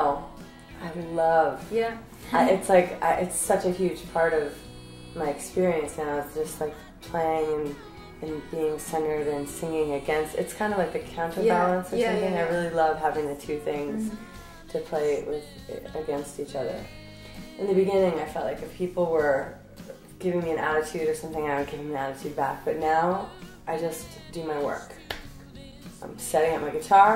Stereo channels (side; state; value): both; identical; correlation 1.00